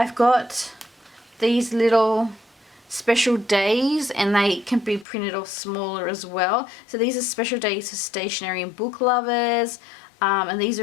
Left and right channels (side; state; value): right; drops out; at 5.1 s